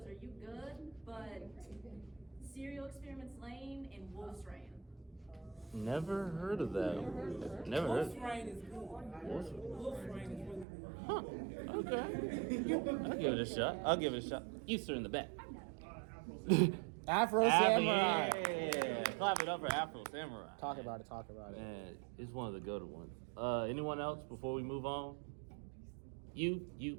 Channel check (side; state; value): left; drops out; at 10.7 s